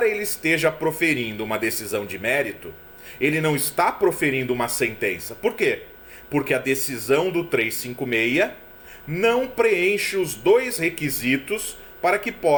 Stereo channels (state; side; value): identical; both; correlation 1.00